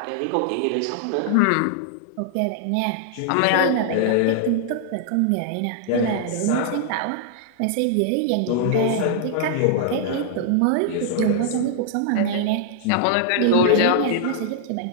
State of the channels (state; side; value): different; both; correlation -0.01